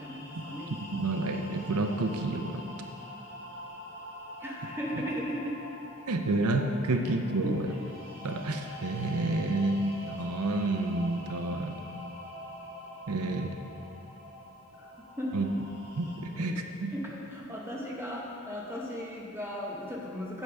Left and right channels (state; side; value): normal; both; correlation 0.55